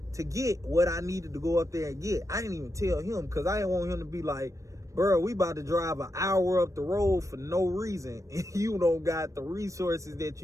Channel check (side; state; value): left; late; 0.15 ms